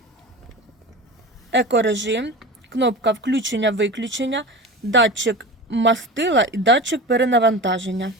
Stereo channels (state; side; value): normal; both; correlation 0.31